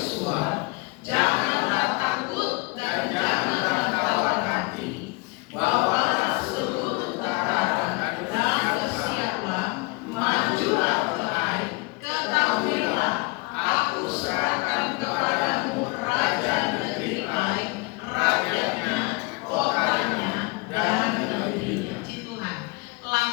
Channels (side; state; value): right; quieter; 26.6 dB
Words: janganlah takut dan janganlah tawar hati, bawalah seluruh tentara dan bersiaplah, majulah ke Ai, ketahuilah aku serahkan kepadamu raja negeri Ai, rajanya, kotanya, dan negerinya. Tuhan,